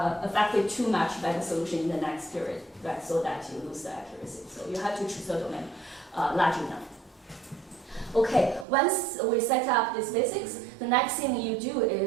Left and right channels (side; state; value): left; drops out; at 8.7 s